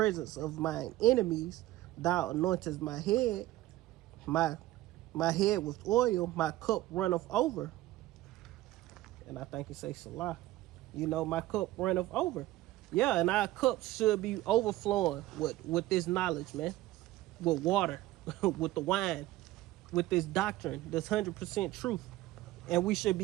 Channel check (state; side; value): quieter; left; 16.3 dB